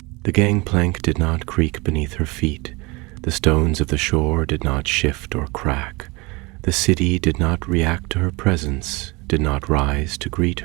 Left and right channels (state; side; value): quieter; left; 25.3 dB